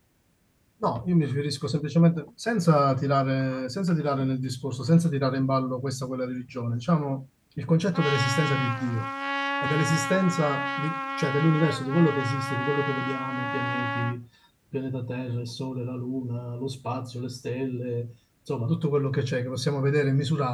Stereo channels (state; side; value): identical; both; correlation 1.00